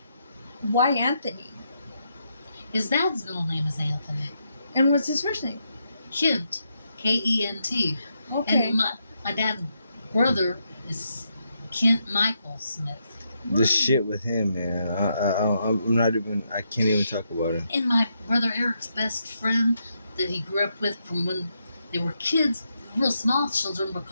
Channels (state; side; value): inverted; both; correlation -0.80